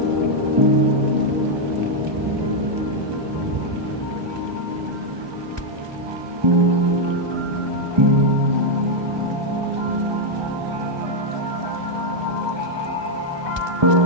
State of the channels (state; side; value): late; left; 1.2 ms